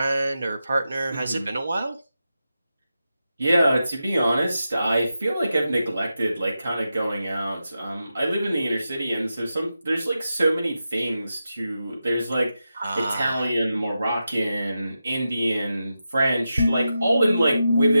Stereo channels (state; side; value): inverted; both; correlation -0.90